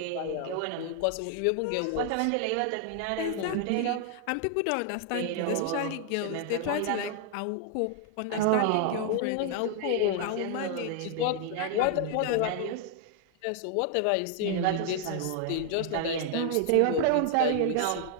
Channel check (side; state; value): both; different; correlation 0.00